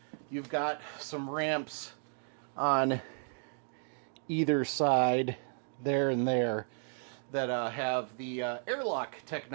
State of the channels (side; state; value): left; silent; 55 dB below the other